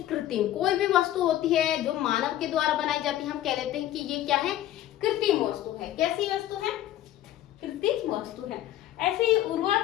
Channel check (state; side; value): quieter; right; 13.1 dB